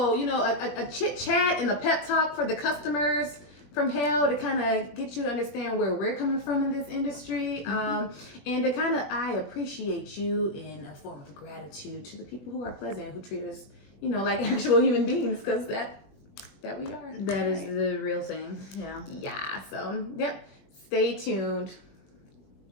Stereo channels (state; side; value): late; right; 21 ms